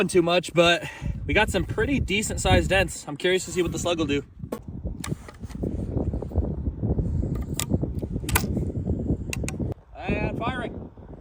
too much, but we got some pretty decent sized dents. I'm curious to see what the slug will do. And firing.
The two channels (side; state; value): both; identical; correlation 1.00